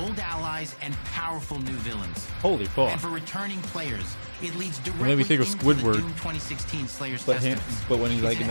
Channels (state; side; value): inverted; both; correlation -1.00